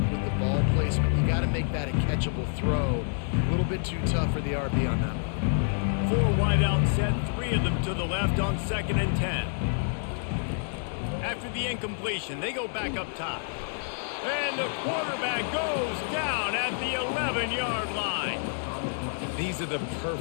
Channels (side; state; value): right; silent; digital silence